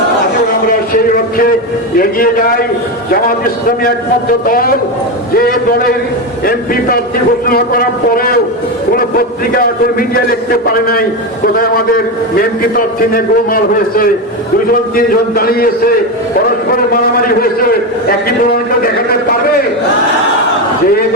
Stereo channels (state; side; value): normal; both; correlation 0.14